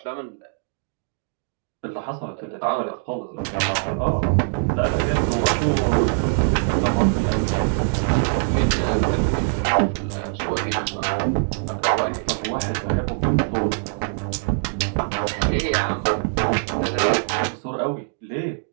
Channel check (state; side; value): silent; left; digital silence